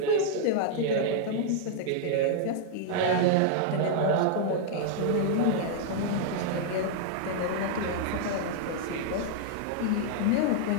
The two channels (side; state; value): both; different; correlation -0.01